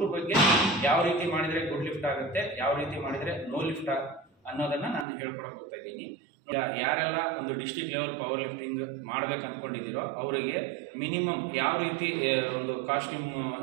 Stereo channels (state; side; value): drops out; left; at 5.1 s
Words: ಬಗ್ಗೆ ಯಾವ ರೀತಿ ಮಾಡಿದರೆ ಗುಡ್ ಲಿಫ್ಟ್ ಆಗುತ್ತೆ, ಯಾವ ರೀತಿ ಮಾಡಿದರೆ ನೋ ಲಿಫ್ಟ್ ಅನ್ನೋದನ್ನು ನಾನು ಹೇಳ್ಕೊಡಕ್ಕೆ ಹೋಗ್ತಾ ಇದ್ದೀನಿ. ಯಾರೆಲ್ಲ ಒಂದು ಡಿಸ್ಟ್ರಿಕ್ಟ್ ಲೆವೆಲ್ ಪವರ್ ಲಿಫ್ಟಿಂಗ್ ಮಾಡ್ಬೇಕು ಅಂದ್ಕೊಂಡಿದ್ದೀರೋ ಅವರಿಗೆ ಮಿನಿಮಮ್ ಯಾವ ರೀತಿ ಒಂದು ಕಾಸ್ಟ್ಯೂಮ್